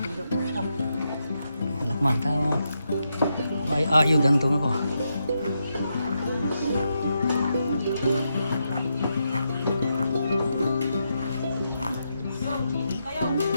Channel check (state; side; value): inverted; both; correlation -0.84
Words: Alakman, tama. May ayod ang tunga ko.